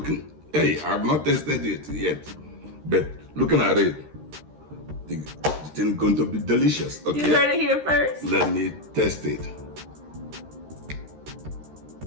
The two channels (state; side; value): late; left; 13 ms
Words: Hey, I've not tasted it yet, but looking at it, it's going to be delicious. Okay. You heard it here first. Let me test it.